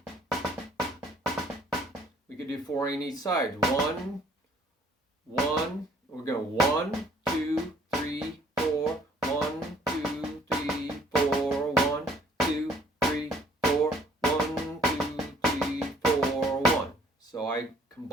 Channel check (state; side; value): normal; both; correlation 0.60